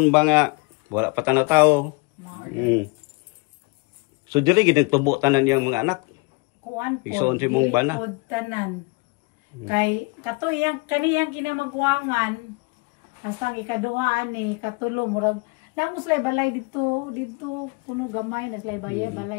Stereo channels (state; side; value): quieter; right; 28.1 dB